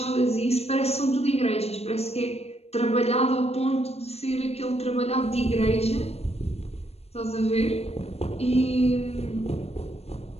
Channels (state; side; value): late; right; 0.30 ms